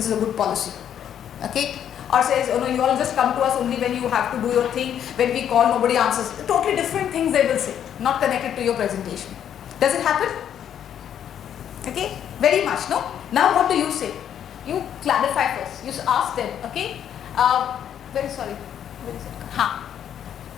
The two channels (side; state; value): right; quieter; 9.5 dB